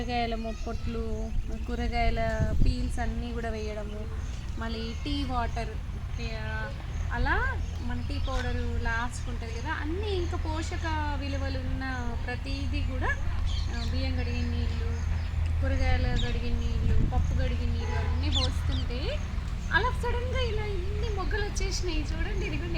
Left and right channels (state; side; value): identical; both; correlation 1.00